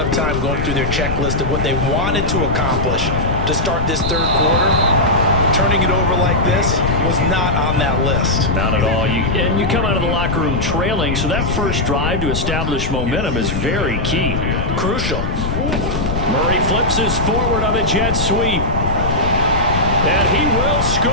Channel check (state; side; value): noise; left; rumble, 2 dB below the sound